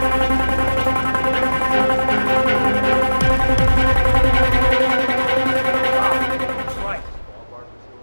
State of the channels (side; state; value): both; inverted; correlation -1.00